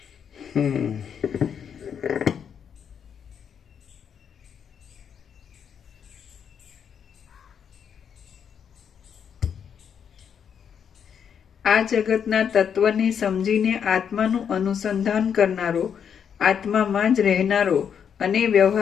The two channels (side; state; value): right; quieter; 7.7 dB